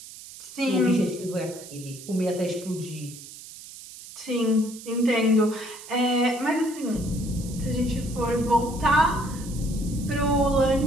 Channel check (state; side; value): noise; right; hiss, 15 dB below the sound